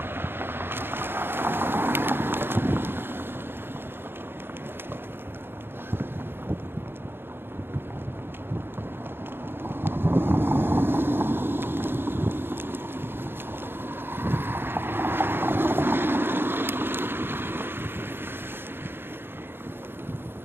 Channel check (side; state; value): left; late; 0.10 ms